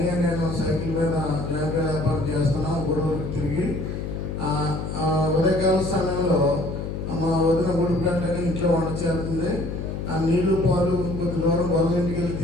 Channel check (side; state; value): left; noise; hum, 5 dB below the sound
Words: నేను సైకిల్ మీద జాగ్రత్త వ్యాపారం చేస్తున్నాం. గొడవకి తిరిగి ఉదయకాల సమయంలో మా వదిన ఉడుపులంటే ఇంట్లో వంట చేస్తుంది. ఆ నీళ్లు పాలు కొద్ది దూరం గొల్ల ఇంటికి వెళ్ళి